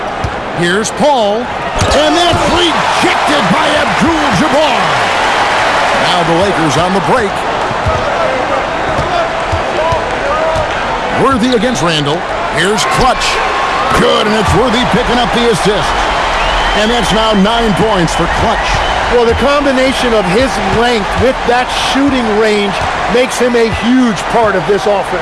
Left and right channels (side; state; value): both; identical; correlation 1.00